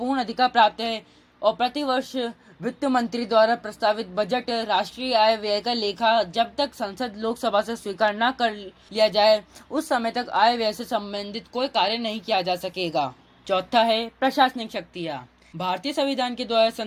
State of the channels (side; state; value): both; identical; correlation 1.00